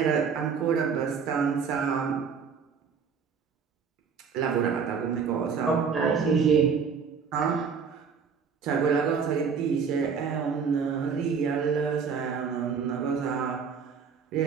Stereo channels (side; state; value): left; quieter; 6.2 dB